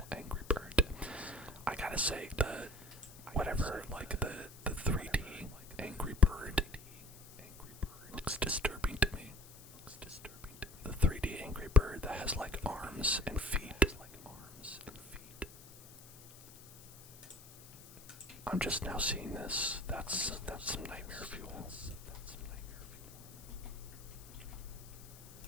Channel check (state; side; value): noise; left; hiss, 19 dB below the sound